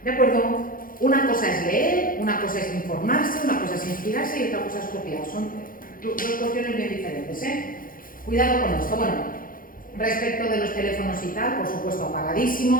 ¿De acuerdo? Una cosa es leer, una cosa es informarse, una cosa es inspirarse y otra cosa es copiar. Son dos cuestiones bien diferentes, ¿eh? Cuidado con esto. Bueno, respecto de los teléfonos y tal, por supuesto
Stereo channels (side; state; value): right; late; 0.41 ms